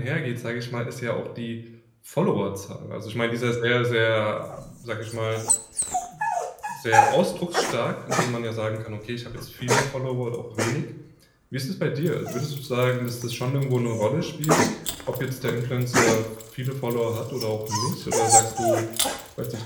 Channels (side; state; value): both; identical; correlation 1.00